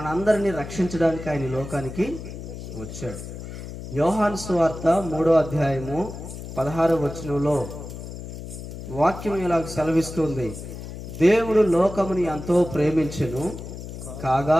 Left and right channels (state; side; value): noise; left; hum, 10 dB below the sound